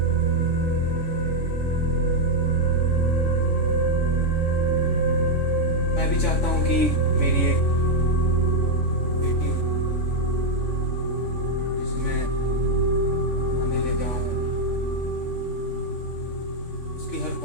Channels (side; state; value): right; late; 3.5 ms